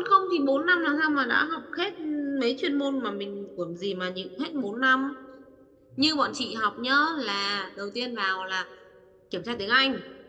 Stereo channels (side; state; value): both; identical; correlation 1.00